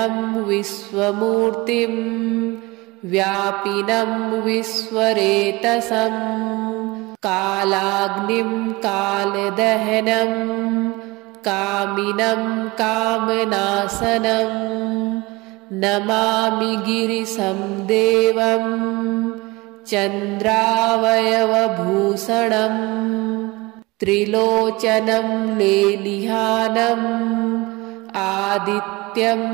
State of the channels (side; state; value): left; quieter; 23.0 dB